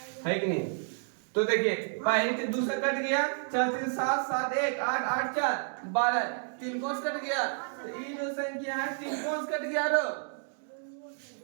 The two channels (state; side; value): silent; left; 57 dB below the other